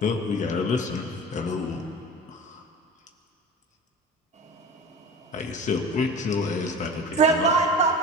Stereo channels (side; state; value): both; normal; correlation 0.35